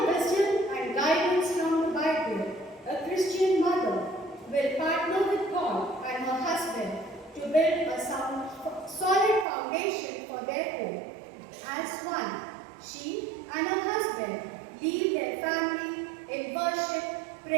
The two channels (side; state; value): left; drops out; at 9.5 s